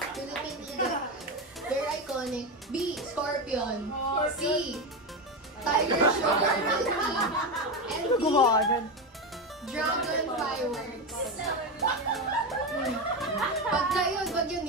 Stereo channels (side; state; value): both; normal; correlation 0.15